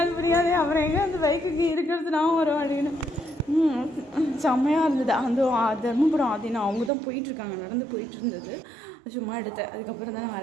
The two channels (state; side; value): drops out; left; at 6.9 s